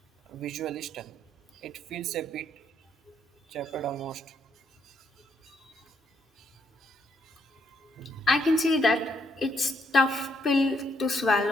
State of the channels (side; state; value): both; normal; correlation 0.73